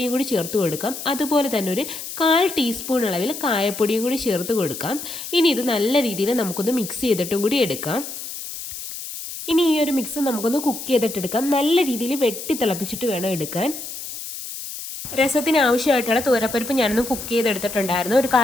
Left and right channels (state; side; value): noise; left; hiss, 9 dB below the sound